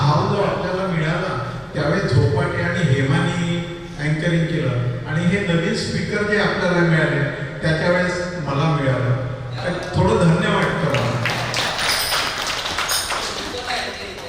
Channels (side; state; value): both; identical; correlation 1.00